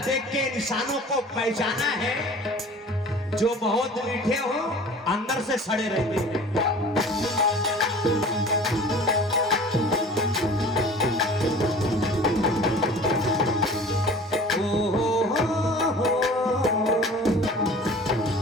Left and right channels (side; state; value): both; normal; correlation 0.44